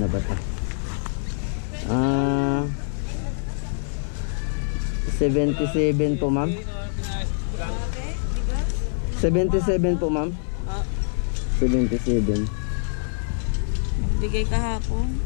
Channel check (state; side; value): silent; right; 58 dB below the other